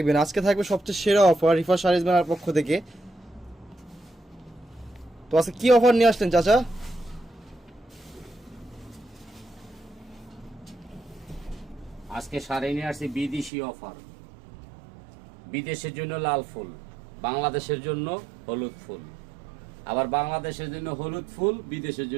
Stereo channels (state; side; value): drops out; left; at 13.5 s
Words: আজকে থাকবে সবচেয়ে সেরা অফার রিফা শাড়িজ মেলার পক্ষ থেকে। তো আজকে কি অফার নিয়ে আসলেন চাচা? আজকে শাড়ি নিয়ে আসছি বিদেশি অফার। বিদেশের জন্য লাল ফুল, বাংলাদেশের জন্য হলুদ ফুল, আবার বাংলাদেশের জন্য হলুদ ফুল, বিদেশের